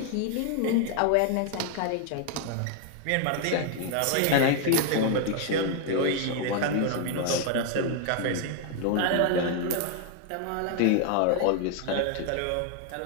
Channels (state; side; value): different; both; correlation 0.00